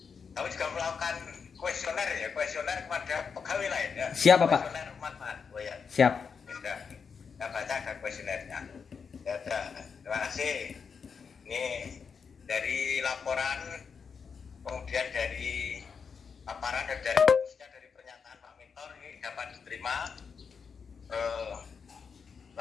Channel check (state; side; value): quieter; right; 5.9 dB